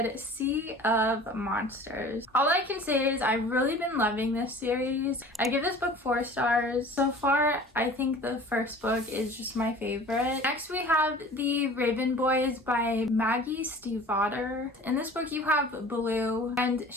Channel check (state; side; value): normal; both; correlation 0.44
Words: Sea of Monsters. All I can say is I've really been loving this series. I give this book 4 stars. So far, I think the first book is just my favorite. Next, we have The Raven Boys by Maggie Stiefvater. In this book, you have Blue, and